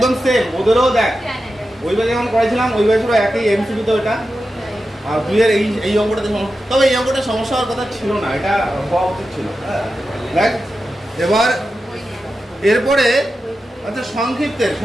সেম ওদেরও। দেখ ওইভাবে যেমন করেছিলাম ওইভাবে পুরো একই এমসিকিউ তো এটা। আর তুই এর এই অঙ্কটাতে তবে এই অঙ্কটা সমস্যা হওয়ার কথা ছিল না, এটা হওয়া উচিত ছিল। দেখ এবার এরপরে আচ্ছা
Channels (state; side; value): normal; both; correlation 0.91